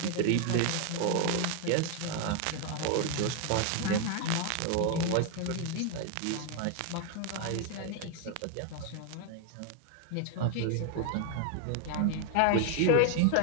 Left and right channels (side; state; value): both; different; correlation 0.01